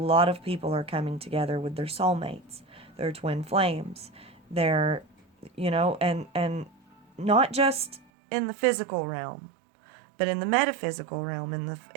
of people are coming together with their soulmates, their twin flames, their, and not just in the physical realm, but in the metaphysical realm, in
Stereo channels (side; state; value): left; drops out; at 8.1 s